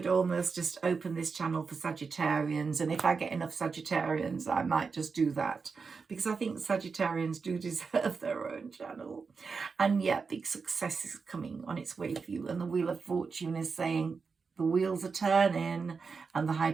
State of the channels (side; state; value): left; quieter; 5.0 dB